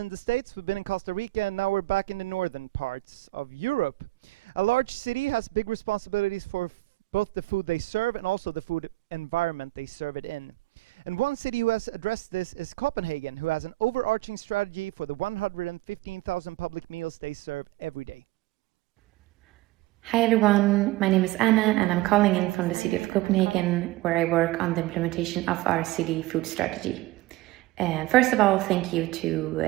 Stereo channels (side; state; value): left; quieter; 18.5 dB